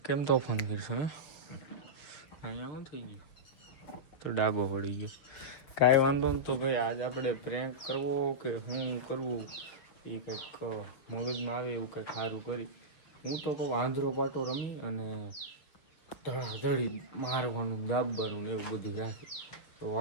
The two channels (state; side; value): late; right; 6.8 ms